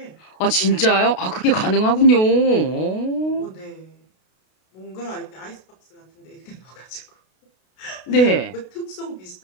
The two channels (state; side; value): late; right; 32 ms